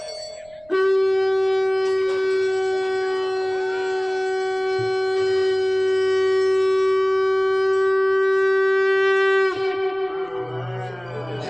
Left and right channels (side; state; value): right; noise; rumble, 30 dB below the sound